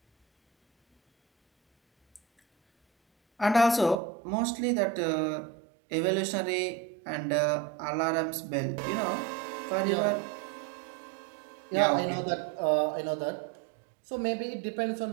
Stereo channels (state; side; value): drops out; left; at 4.0 s